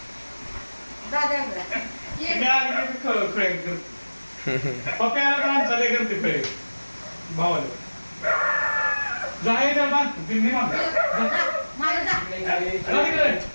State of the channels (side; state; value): both; inverted; correlation -1.00